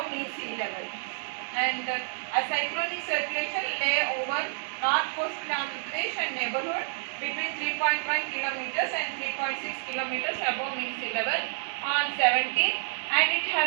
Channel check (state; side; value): silent; left; 59 dB below the other